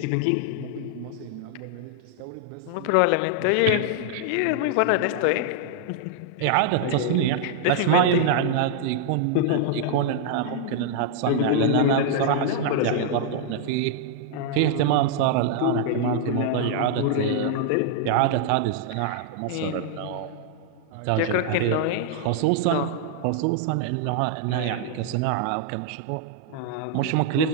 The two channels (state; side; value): different; both; correlation -0.01